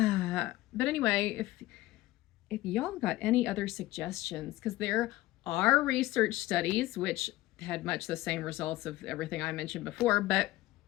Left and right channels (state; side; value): quieter; right; 17.3 dB